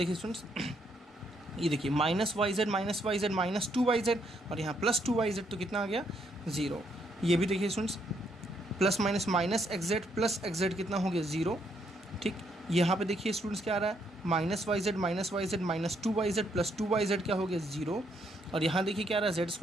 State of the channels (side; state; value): both; normal; correlation 0.73